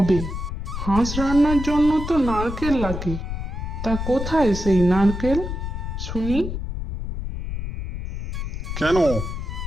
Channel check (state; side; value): noise; left; rumble, 5 dB below the sound